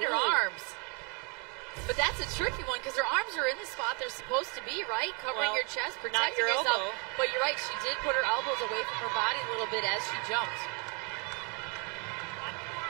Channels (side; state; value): left; quieter; 33.9 dB